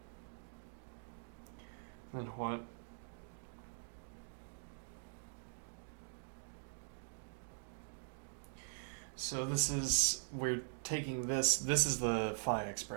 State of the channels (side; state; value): left; silent; digital silence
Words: Then what? So this is, we're taking this is the phi